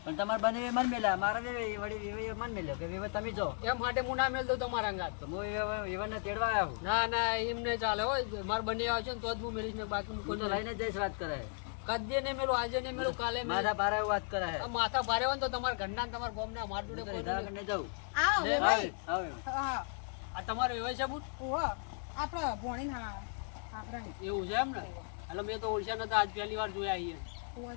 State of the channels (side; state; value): right; silent; 54 dB below the other